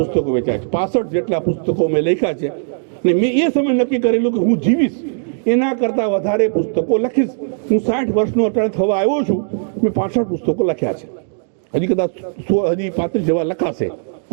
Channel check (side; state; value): left; silent; digital silence